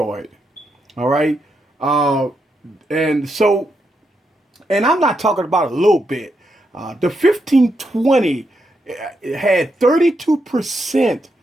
All right. Uh, and so, and I'm not talking about a little bit. The 1520 had 32%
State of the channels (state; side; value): normal; both; correlation 0.82